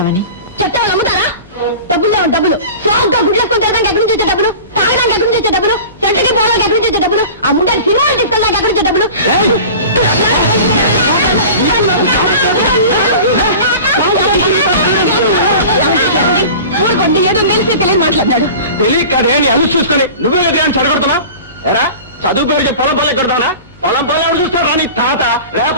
చెప్తా వాళ్ళు అమ్ముతారా? డబ్బులు డబ్బులు సోగ్గా గుడ్లేసుకొని తిరగడానికి ఎక్కడి నుంచి వచ్చే డబ్బులు? తాగడానికి ఎక్కడి నుంచి వచ్చే డబ్బులు? సెంటర్కి పోవడానికి ఎక్కడి నుంచి వచ్చే డబ్బులు? ఆ ముందరి సినిమాలు తీసుకెళ్ళడానికి ఎక్కడి నుంచి డబ్బులు? ఊరుకోండి, ఏదో తెలిసి తెలియని మాట్లాడినాడు. తెలియకడే నీ అల్లు చూసుకొని నువ్వే కదా చెడగొడుతున్నావు. ఎరా చదువు పేరు చెప్పి పొలం పల్లె కొడతావునా? పొలం పల్లె ఎవరు చూస్తావు రా? నీ తాత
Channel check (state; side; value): inverted; both; correlation -0.37